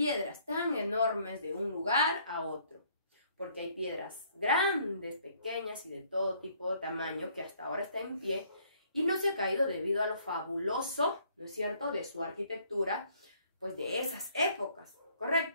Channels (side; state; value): both; inverted; correlation -0.63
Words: tan enormes de un lugar a otro. Porque hay piedras grandes, pequeñas y de todo tipo de tamaño que hasta ahora está en pie y no se ha caído debido a lo fabuloso, ¿no es cierto?, de su arquitectura, pues de esas épocas,